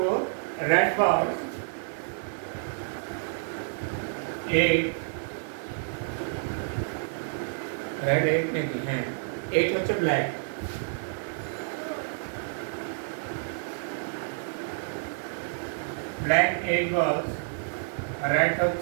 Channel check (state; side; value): silent; left; digital silence